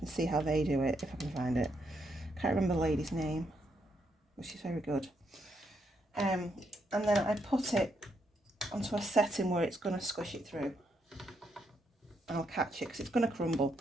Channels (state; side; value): normal; both; correlation 0.78